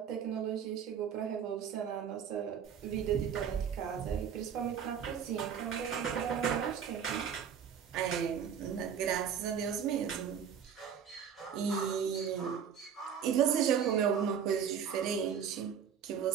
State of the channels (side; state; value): left; quieter; 7.8 dB